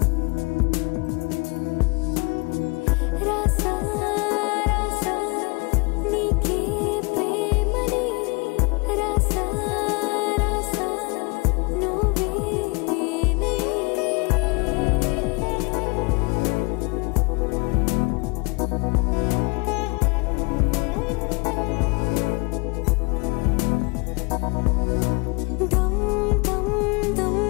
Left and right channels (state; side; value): quieter; right; 29.6 dB